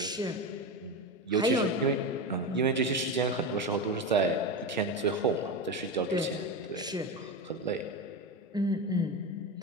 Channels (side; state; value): both; normal; correlation 0.19